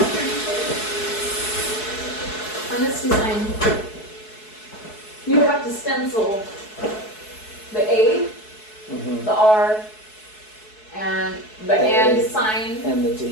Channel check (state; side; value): late; right; 4.7 ms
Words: On this design, you have to stencil the A, the R, and the and sign, And the